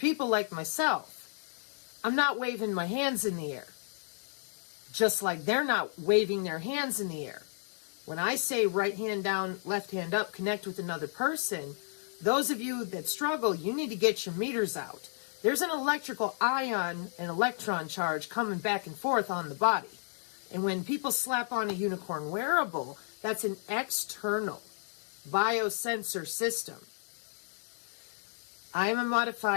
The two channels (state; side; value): silent; right; digital silence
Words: like myself, I'm not waving my hands in the air. Just like they're not waving their hands in the air. When I say right hand down, left hand up, connect with another person, those of you that struggle, you need to get your meters out. There's an electrical ion and electron charge coming back and forth on the body. And when people slap on a unicorn wearable, that's an external biosensor system. I am a